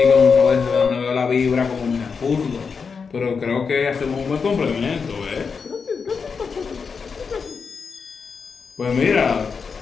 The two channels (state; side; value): quieter; right; 5.5 dB